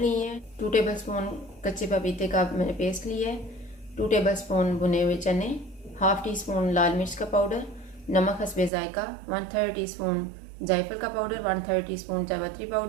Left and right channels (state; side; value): drops out; left; at 8.7 s